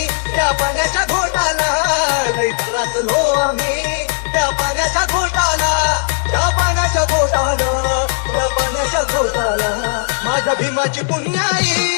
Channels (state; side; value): silent; right; digital silence